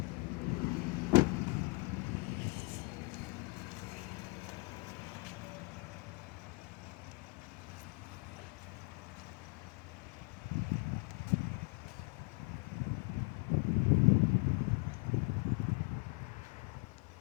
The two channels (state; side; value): quieter; right; 30.8 dB